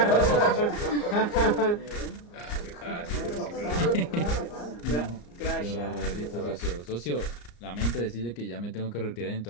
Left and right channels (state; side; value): late; right; 34 ms